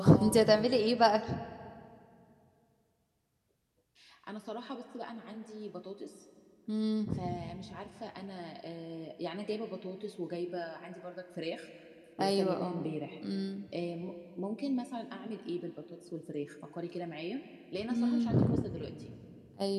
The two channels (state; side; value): identical; both; correlation 1.00